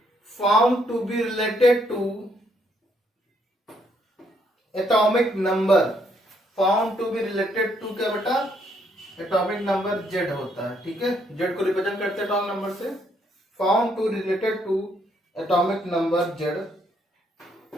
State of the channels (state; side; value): normal; both; correlation 0.71